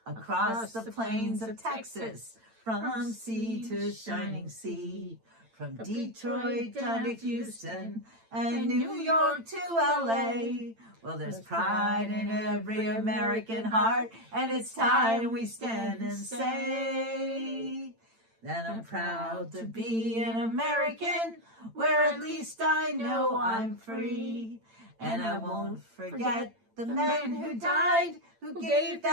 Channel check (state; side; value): late; left; 8.9 ms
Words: across the plains of Texas, from sea to shining sea, from Detroit down to Houston and New York to LA. Well, there's pride in every American heart, and it's time we stand and say that I'm proud to be an American, where at least I know I'm free. And I won't forget the men who died, who gave